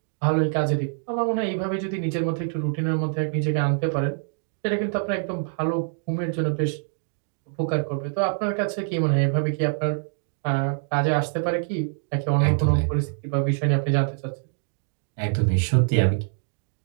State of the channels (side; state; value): left; silent; digital silence